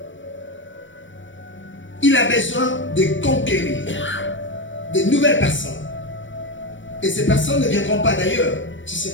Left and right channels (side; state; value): right; late; 0.56 ms